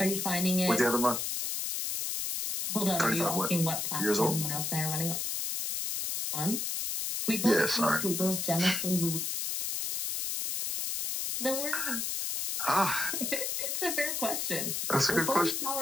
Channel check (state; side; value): noise; left; hiss, 1 dB below the sound